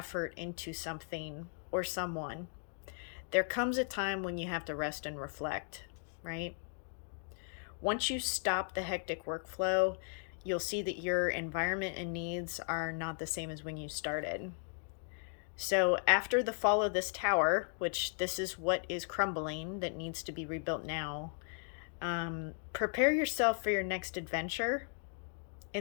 into something or someone, there comes a time when you have to rest and reflect, right? Once you stop the hectic workflow, you'll see that your environment and needs are not the same as when you started. So after the fall of this tower, which this is what is crumbling that needs to be rebuilt now, prepare yourself for your next adventure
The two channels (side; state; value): right; silent; 53 dB below the other